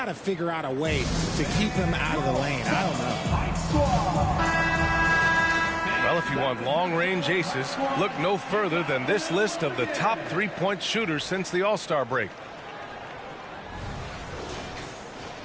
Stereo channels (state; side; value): identical; both; correlation 1.00